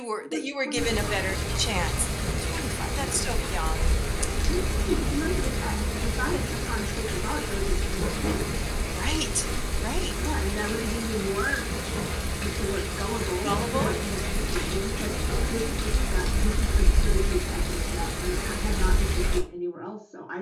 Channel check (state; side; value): identical; both; correlation 1.00